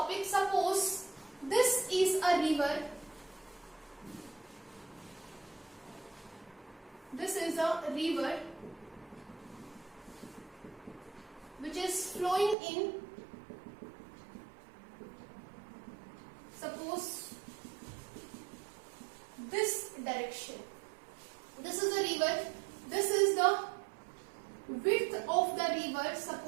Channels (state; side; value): drops out; left; at 12.6 s